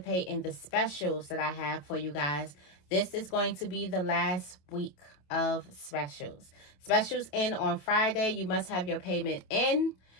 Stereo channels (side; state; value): right; late; 27 ms